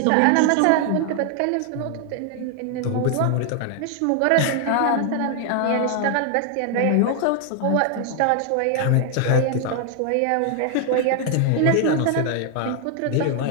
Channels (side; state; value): both; different; correlation 0.00